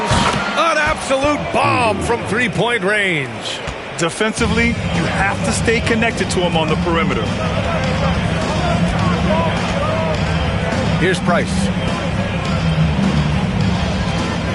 An absolute bomb from three-point range. Defensively, you have to stay connected to him on the perimeter. Here's Price.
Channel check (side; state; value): both; identical; correlation 1.00